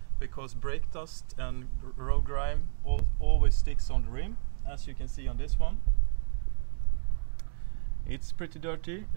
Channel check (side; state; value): left; silent; digital silence